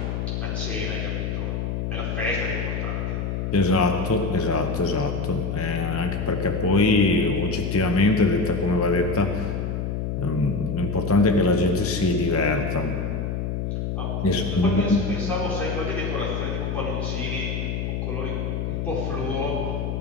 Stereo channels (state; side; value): noise; left; hum, 2 dB below the sound